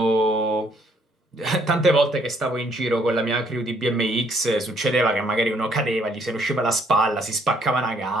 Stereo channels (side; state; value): both; normal; correlation 0.67